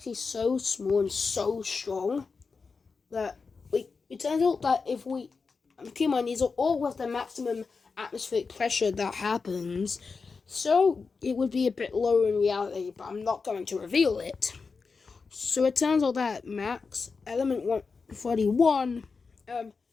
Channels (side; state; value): right; quieter; 4.8 dB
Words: so small and so strong that it turns out that if we keep in mind, these are all with the maximum atmospheric pressure that happens, so it would be a bit lower in reality, but I'm not going to reveal it. So it turns out that max element 141,